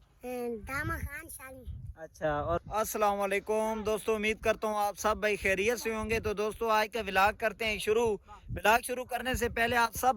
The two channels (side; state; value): both; identical; correlation 1.00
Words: दामा खान शाली। अच्छा। और अस्सलाम वालेकुम दोस्तों, उम्मीद करता हूँ आप सब भाई खैरियत से होंगे। तो दोस्तों आज का व्लॉग करते हैं शुरू। व्लॉग शुरू करने से पहले आप